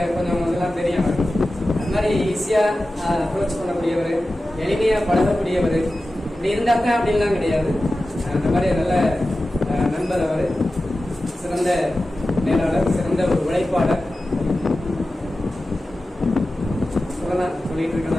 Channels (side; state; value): both; normal; correlation 0.94